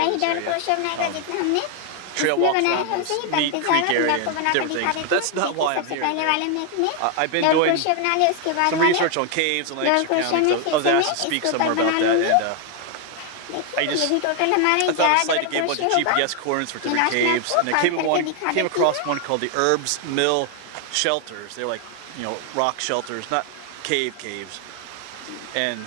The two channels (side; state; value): both; different; correlation 0.00